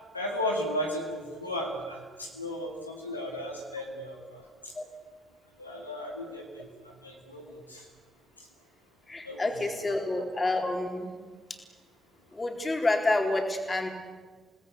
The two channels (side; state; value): both; normal; correlation 0.68